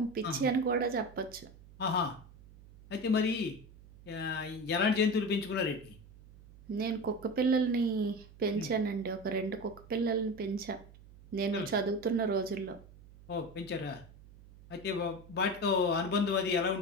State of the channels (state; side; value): noise; right; hum, 21 dB below the sound